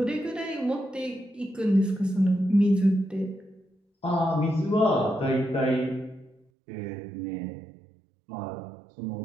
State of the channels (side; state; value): left; drops out; at 6.5 s